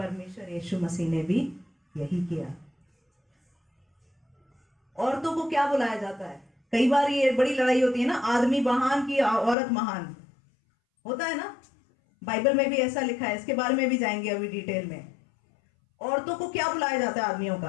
यीशु मसीह ने भी यही किया। औरतों को क्या बुलाया जाता है? कई बार ये बड़ी लड़ाई होती है ना, आदमी महान की औरत महान, होता है ना? बाइबल में भी ऐसा लिखा है, इसके बारे में भी जाएंगे अभी डिटेल में। औरतों को क्या बुलाया जाता है? आदमियों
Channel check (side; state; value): right; drops out; at 9.6 s